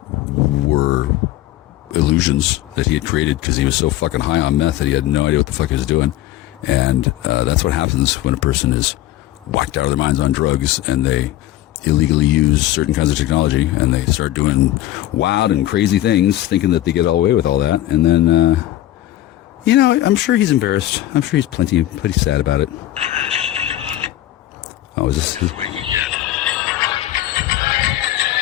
were illusions that he had created because he was so fucking high on meth that he had no idea what the fuck he was doing. And that's what happens when a person is whacked out of their minds on drugs and they illegally use certain kinds of technology, and they start doing wild and crazy things, thinking that they get all away with all that, and then, I'm sure he's embarrassed. I'm sure he's pretty sad about it. Oh, is this?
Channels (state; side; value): quieter; right; 14.1 dB